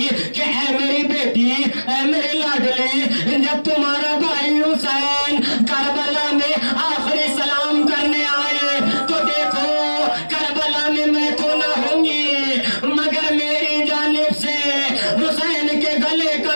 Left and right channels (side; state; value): both; inverted; correlation -1.00